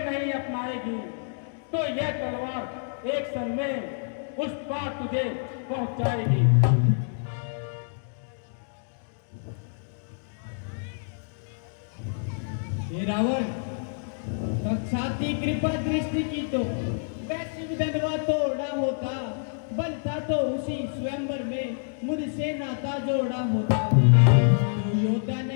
नहीं अपनाएगी तो यह तलवार एक क्षण में उस पार तुझे पहुंचाएगी। हे रावण, साक्षाती कृपा दृष्टि की तो वैसी विधवा तोड़ा होता, बनता तो उसी स्वयंवर में मुझसे नाता जोड़ा होता। तू योद्धा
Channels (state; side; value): silent; right; digital silence